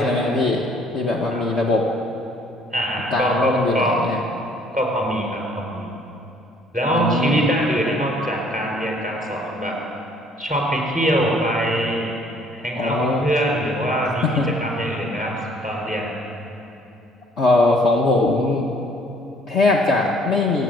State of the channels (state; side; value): normal; both; correlation 0.60